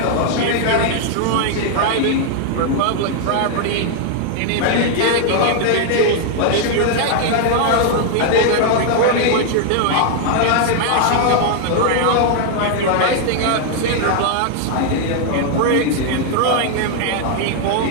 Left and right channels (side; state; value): both; different; correlation 0.00